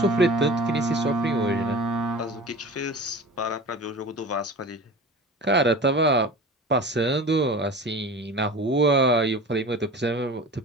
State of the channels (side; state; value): both; normal; correlation 0.36